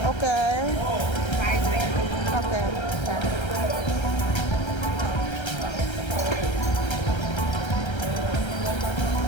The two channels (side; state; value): right; late; 1.3 ms